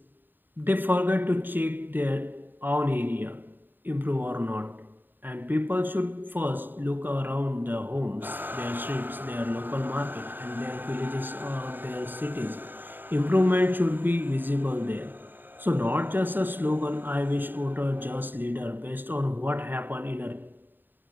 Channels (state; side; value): late; left; 0.092 ms